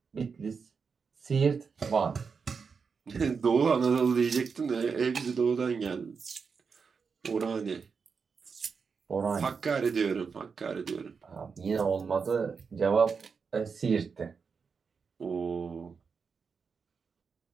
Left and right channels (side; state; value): left; quieter; 5.6 dB